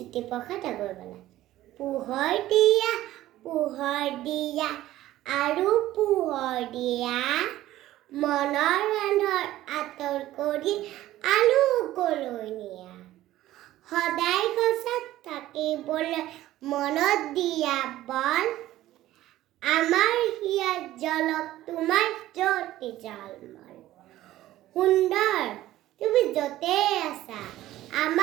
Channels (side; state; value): left; quieter; 14.9 dB